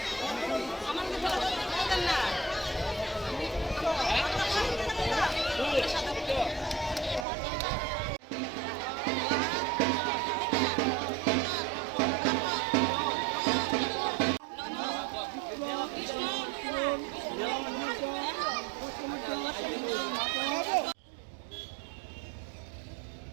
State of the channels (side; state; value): left; drops out; at 7.2 s